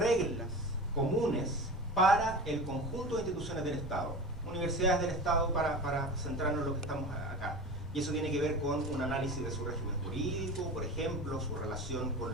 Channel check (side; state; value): both; normal; correlation 0.31